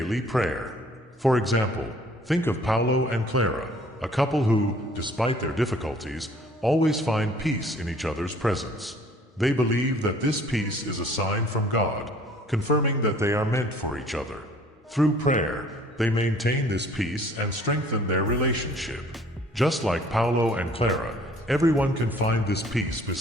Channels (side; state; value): both; normal; correlation 0.55